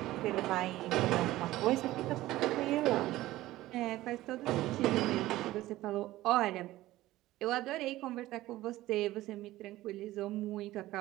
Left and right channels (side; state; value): left; quieter; 16.4 dB